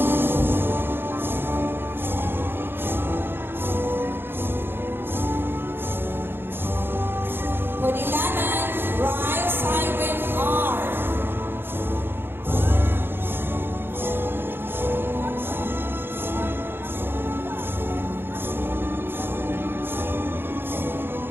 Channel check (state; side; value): late; left; 0.10 ms